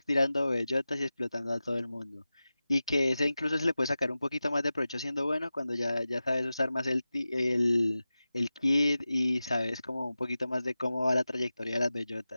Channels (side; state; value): both; inverted; correlation -0.95